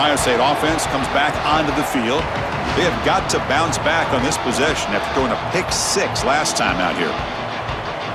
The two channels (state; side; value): identical; both; correlation 1.00